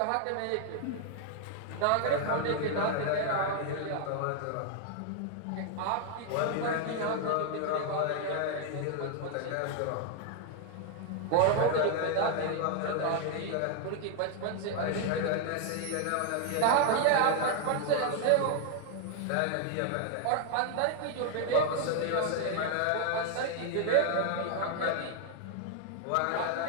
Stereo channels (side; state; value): both; different; correlation 0.00